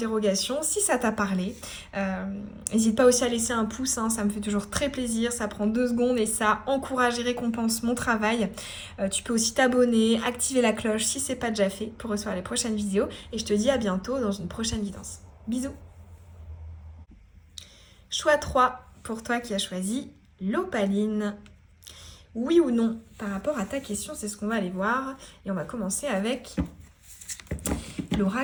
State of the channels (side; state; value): both; identical; correlation 1.00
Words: si ça t'a parlé. N'hésite pas aussi à laisser un pouce, hein, ça me fait toujours très plaisir, ça prend 2 secondes et ça encourage et récompense mon travail. Tu peux aussi t'abonner, activer la cloche si ce n'est pas déjà fait pour recevoir les prochaines vidéos. Et je te dis à bientôt dans une prochaine guidance. Bisous. Choix 3 pour toi qui as choisi l'opaline. Oui ou non par rapport à ta question, c'est ce qu'on va aller voir. Et on va commencer avec